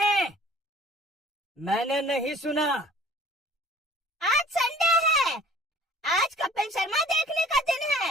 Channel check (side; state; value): both; normal; correlation 0.50